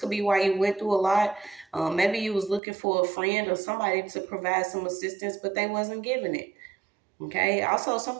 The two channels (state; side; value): drops out; left; at 2.6 s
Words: be why you went through a lot. Maybe you was looking for a friend or somebody to provide some assistance, but they wasn't giving it. Okay. Also,